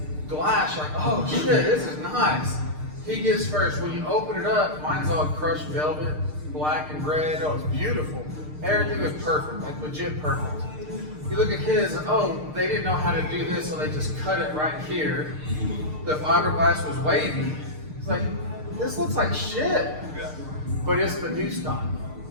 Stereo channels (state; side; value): late; left; 6.6 ms